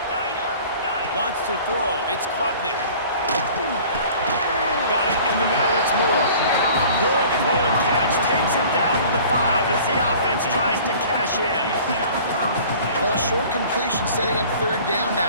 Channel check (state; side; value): inverted; both; correlation -0.47